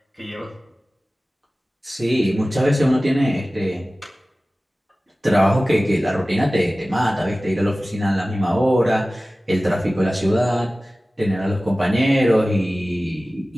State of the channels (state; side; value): normal; both; correlation 0.97